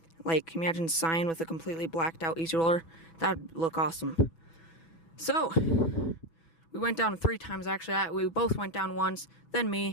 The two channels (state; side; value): late; right; 6.1 ms